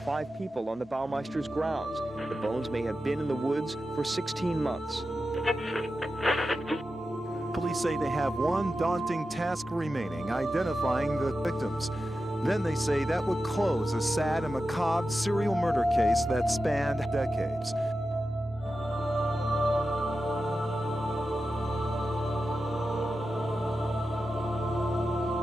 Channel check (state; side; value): normal; both; correlation 0.91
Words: 5 people on the Baumeister's grounds. The bones may have been in the woods for 16 months. Police say they have one daunting task remaining, identifying the victims. Then they say that would close a sad and macabre serial murder case that spanned decades.